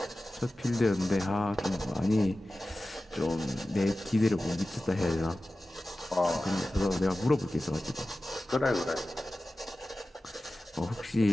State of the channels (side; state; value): both; normal; correlation 0.95